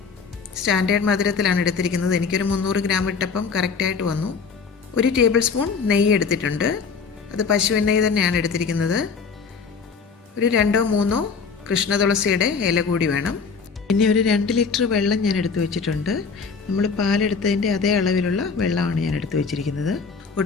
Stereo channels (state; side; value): quieter; right; 5.3 dB